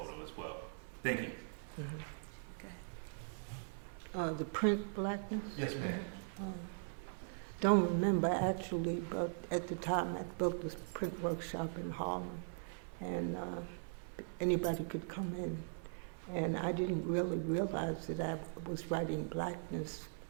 as well. Thank you. Mm-hmm. The print Blackness? Yes, ma'am. Don't remember actually, but at the time I built this print workshop in Harlem, and anybody could come in. And I didn't really realize that I was writing Blackness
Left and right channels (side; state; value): left; silent; 51 dB below the other